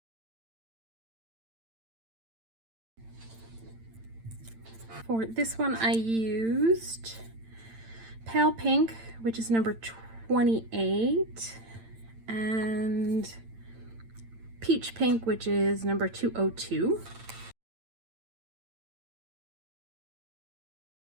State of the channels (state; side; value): late; left; 8.9 ms